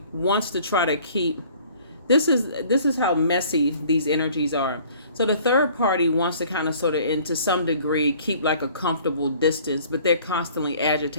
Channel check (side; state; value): both; inverted; correlation -0.53